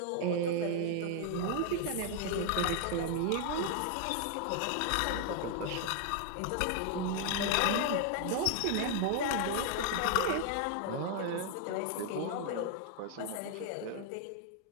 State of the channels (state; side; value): different; both; correlation 0.00